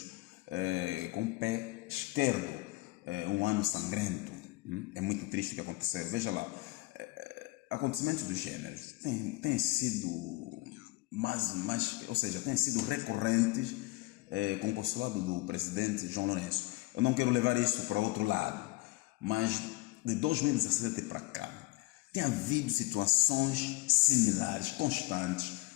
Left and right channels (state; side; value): quieter; right; 20.6 dB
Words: com o pé esquerdo, um ano sangrento. É muito triste o que aconteceu. Veja lá, acontecimentos do gênero têm sido têm sido recorrentes com o consulado do presidente João Lourenço. Eu não quero levar isso para outro lado, mas de 2017 para cá, tem havido situações similares, constantes,